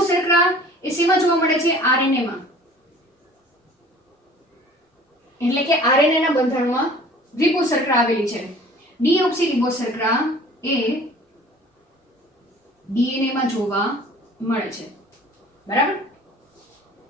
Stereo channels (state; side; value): normal; both; correlation 0.48